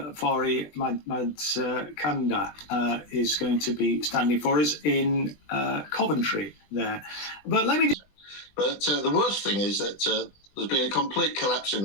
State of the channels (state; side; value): late; right; 20 ms